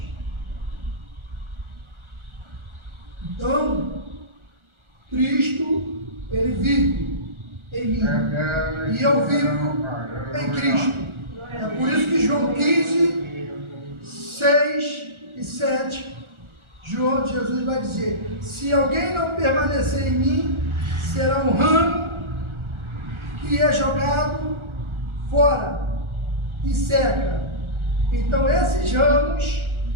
Então, Cristo, Ele vive em mim. E eu vivo em Cristo. É por isso que João 15, 6 e 7, Jesus vai dizer: se alguém não permanecer em mim, será um ramo que é jogado fora e seca. Então esses ramos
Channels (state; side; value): late; left; 1.4 ms